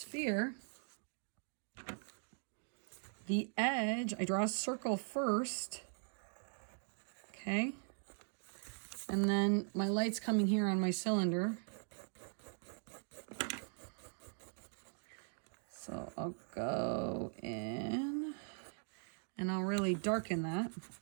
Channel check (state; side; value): silent; left; 51 dB below the other